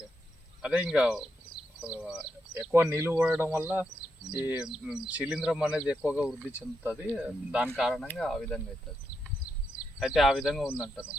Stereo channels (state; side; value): normal; both; correlation 0.83